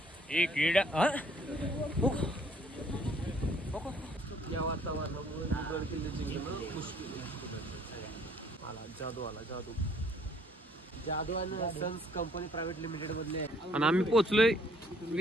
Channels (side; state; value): both; normal; correlation 0.61